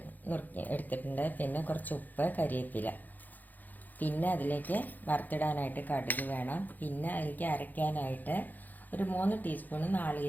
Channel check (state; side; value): late; right; 0.084 ms